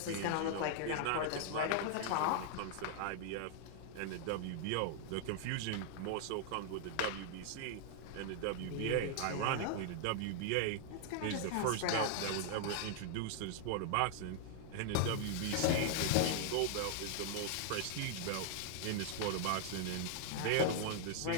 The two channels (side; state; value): both; different; correlation -0.01